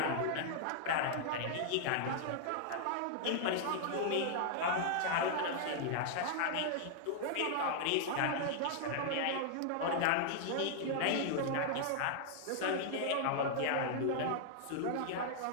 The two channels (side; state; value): both; different; correlation 0.00